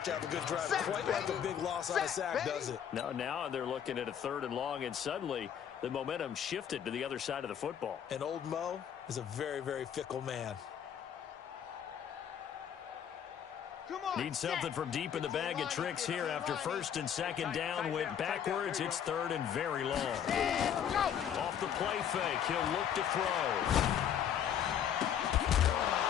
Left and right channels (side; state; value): right; quieter; 9.0 dB